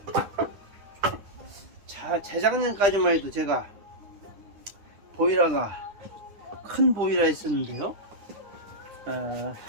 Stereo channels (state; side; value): late; left; 9.9 ms